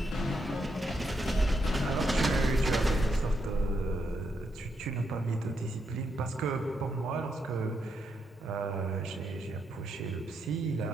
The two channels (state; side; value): normal; both; correlation 0.80